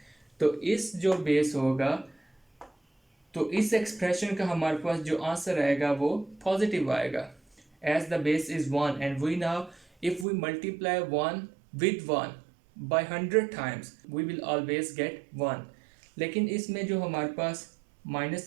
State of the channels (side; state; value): left; drops out; at 10.2 s